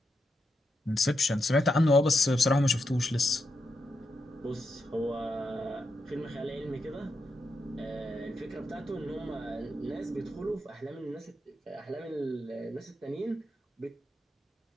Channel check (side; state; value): both; normal; correlation 0.84